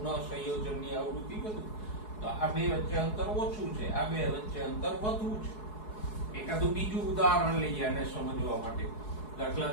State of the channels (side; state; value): right; late; 4.7 ms